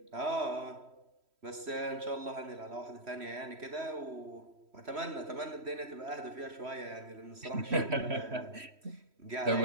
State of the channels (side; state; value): left; late; 3.1 ms